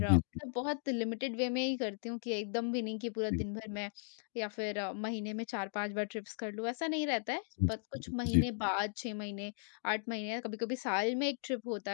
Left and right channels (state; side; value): silent; right; digital silence